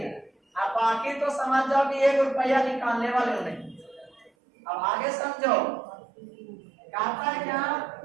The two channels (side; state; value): left; drops out; at 4.3 s